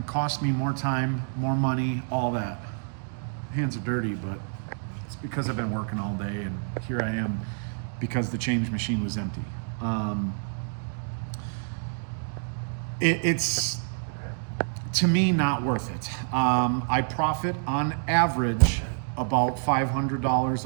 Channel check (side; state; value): left; silent; digital silence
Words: costs me more time, more money, all that. Hands are dirty, but it's because I've been working all day and here I am because the change machine was empty. It's, to me, not worth it. I profit on average about $500